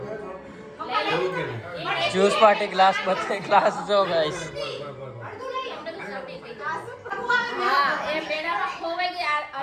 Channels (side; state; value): both; identical; correlation 1.00